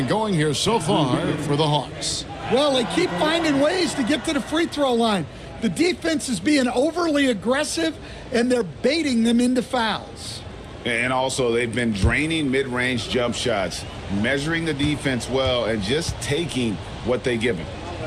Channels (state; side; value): identical; both; correlation 1.00